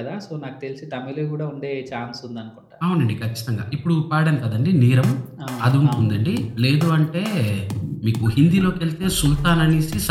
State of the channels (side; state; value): both; identical; correlation 1.00